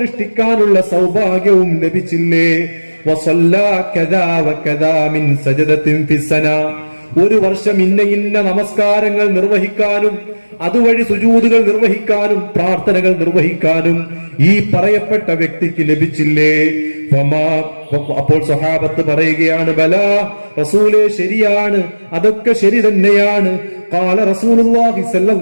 സൗഭാഗ്യവും ലഭിച്ചില്ലേ? വസല്ലാ കദാ വകദാ മിൻ സജദത്തിൻ ഫിസ്സന, 1 വർഷം ഇന്ന നമസ്കാരങ്ങൾ നിർവഹിക്കാനും അതുവഴി സുജൂദുകൾ നിർവഹിക്കാനും പ്രാർത്ഥനകൾ നിർവഹിക്കാനും ഈ പറയപ്പെട്ട വ്യക്തിക്ക് ലഭിച്ചില്ലേ? അപ്പോൾ സ്വഹാബത്ത് പറയുകയാണ്, ബലാ റസൂലേ, ശരിയാണ്, അതൊക്കെ ശരി തന്നെയാണ്. ഖാല റസൂലുള്ളാഹി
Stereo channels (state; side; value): inverted; both; correlation -1.00